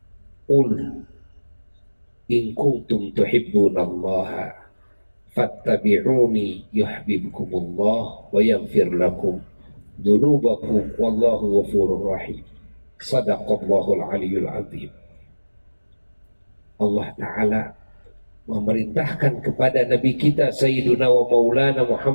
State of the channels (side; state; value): both; inverted; correlation -1.00